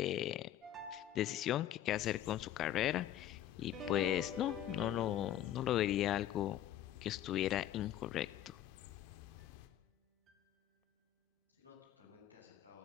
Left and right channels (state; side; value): quieter; right; 11.8 dB